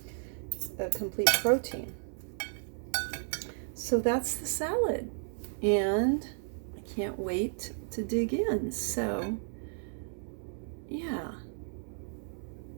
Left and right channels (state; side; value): silent; left; 55 dB below the other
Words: complete protein. So that's the salad, and I can't wait to dig in. So yeah,